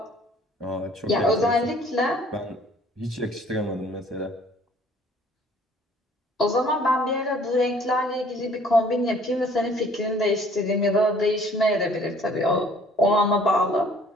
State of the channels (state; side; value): normal; both; correlation 0.56